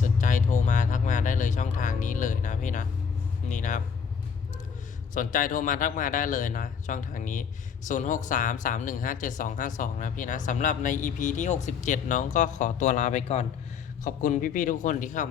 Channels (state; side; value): quieter; right; 6.6 dB